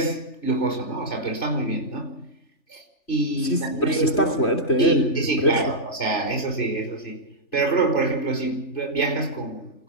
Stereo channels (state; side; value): late; right; 3.4 ms